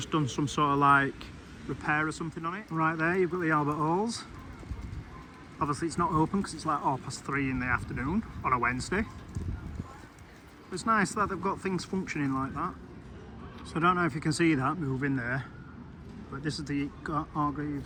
done some sort of like repair or something on it. Right there you've got the Albert Halls. Obviously it's not open because it's like 3:30 in the afternoon on a Wednesday. But it's nice that they've got things functioning like that. So I don't know if you can see that moving there, but this is the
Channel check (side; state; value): both; identical; correlation 1.00